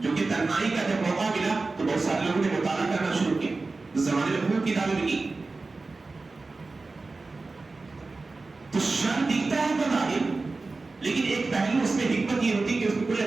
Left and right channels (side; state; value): left; quieter; 3.6 dB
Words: جو کہ تنہائی کا جب موقع ملا تو بہت سارے لوگوں نے مطالعہ کرنا شروع کیا. اس زمانے میں خوب کتابیں لکھی. تو شر دکھتا ہے بظاہر لیکن ایک پہلو اس میں حکمت یہ ہوتی ہے کہ اس میں کوئی